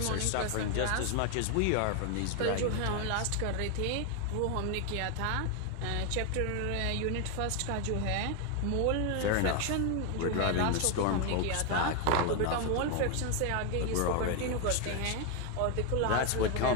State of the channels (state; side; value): different; both; correlation 0.01